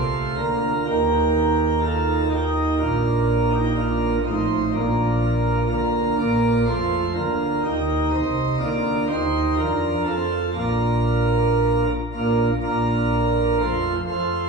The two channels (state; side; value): normal; both; correlation 0.42